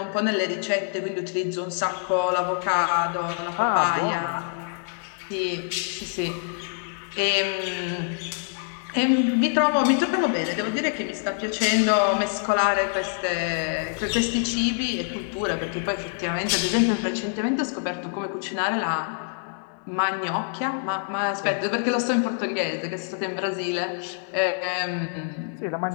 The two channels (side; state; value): right; silent; digital silence